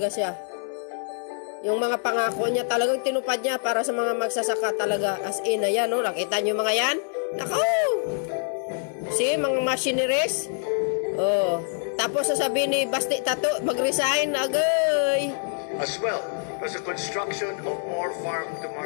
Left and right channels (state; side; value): silent; right; 61 dB below the other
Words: siya. Yung mga pangako niya talagang tinupad niya para sa mga magsasaka talaga. As in, ayan nakita niyo mga yan? Tako! See, mga machineries. Tapos sasabihin ni Basti Tato, mag-resign agay. As well as the construction of more